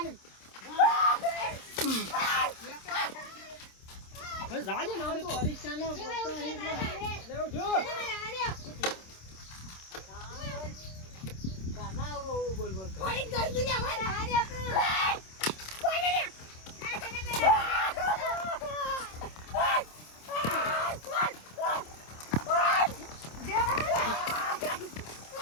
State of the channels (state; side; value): late; right; 26 ms